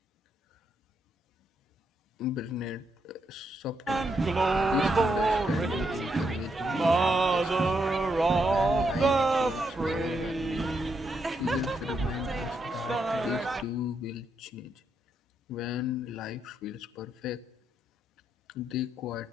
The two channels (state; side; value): normal; both; correlation 0.80